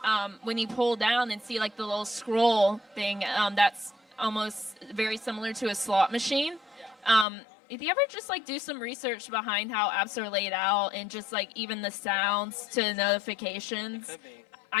when you pull down and see like the little scroll thing, that's almost very similar to a slot machine. If you ever just like do some research behind how apps are laid out and just like even the sounds to notifications,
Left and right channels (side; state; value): right; drops out; at 7.2 s